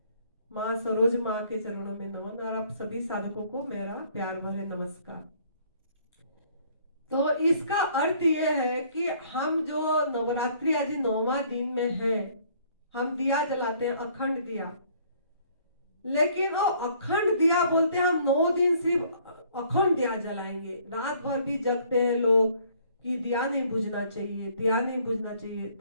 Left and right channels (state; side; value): inverted; both; correlation -0.60